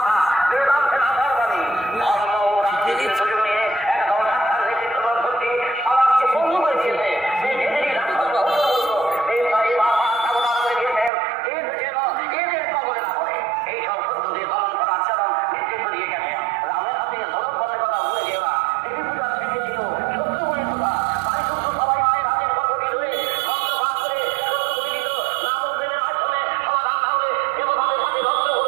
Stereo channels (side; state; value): left; drops out; at 11.1 s